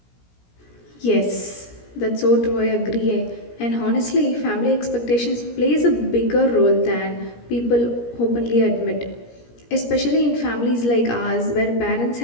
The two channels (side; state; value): right; late; 17 ms